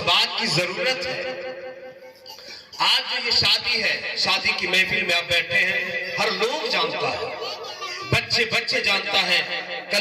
بات کی ضرورت ہے۔ آج جو یہ شادی ہے، شادی کی محفل میں آپ بیٹھے ہیں، ہر لوگ جانتا ہے، بچے جانتا ہے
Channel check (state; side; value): identical; both; correlation 1.00